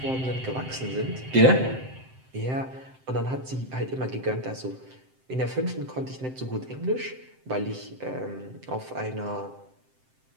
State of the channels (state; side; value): late; left; 7.7 ms